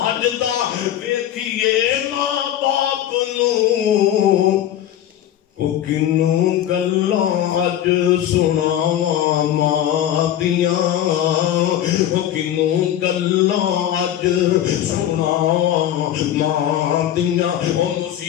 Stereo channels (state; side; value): quieter; right; 11.5 dB